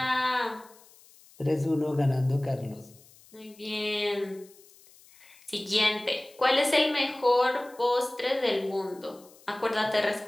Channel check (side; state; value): left; noise; hiss, 26 dB below the sound